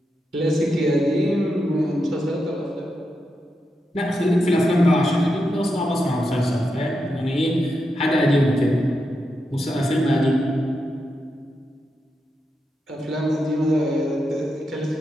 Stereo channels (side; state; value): both; normal; correlation 0.86